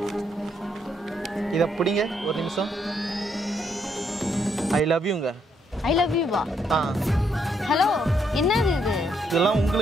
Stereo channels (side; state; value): both; normal; correlation 0.74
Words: இத பிடிங்க ஒரு நிமிஷம். ஐ லவ் யூங்க. ஐ லவ் யூ வா. ஹலோ, என்னது இது? இதெல்லாம்